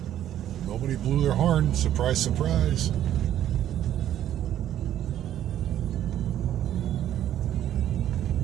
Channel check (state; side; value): quieter; left; 11.5 dB